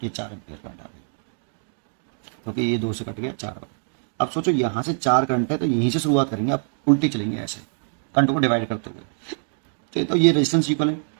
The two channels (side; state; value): left; silent; digital silence